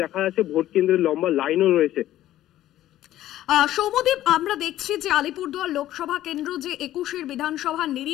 দেখা যাচ্ছে ভোট কেন্দ্রের লম্বা লাইনও রয়েছে। সৌম্যদীপ, আমরা দেখছি যে আলিপুরদুয়ার লোকসভা কেন্দ্র যে 21-এর বিধানসভার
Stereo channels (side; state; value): right; quieter; 13.6 dB